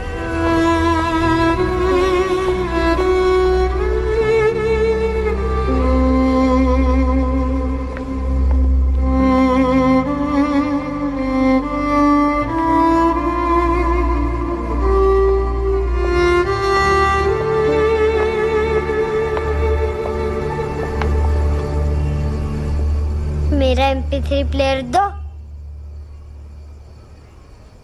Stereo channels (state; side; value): identical; both; correlation 1.00